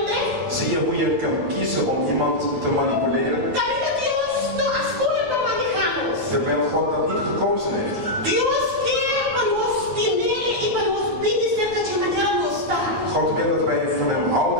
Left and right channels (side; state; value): left; late; 9.8 ms